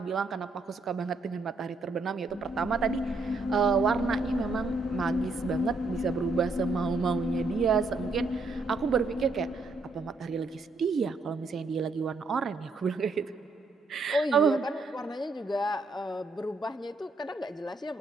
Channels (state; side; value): quieter; left; 3.3 dB